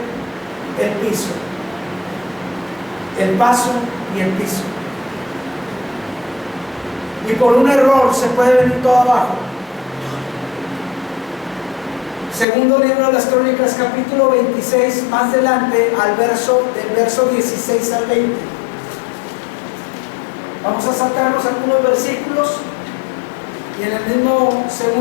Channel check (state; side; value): drops out; right; at 12.5 s